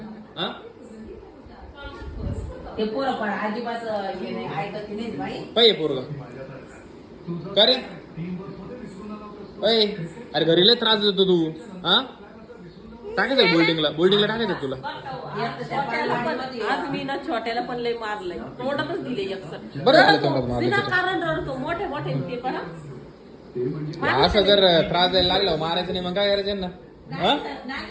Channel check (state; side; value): identical; both; correlation 1.00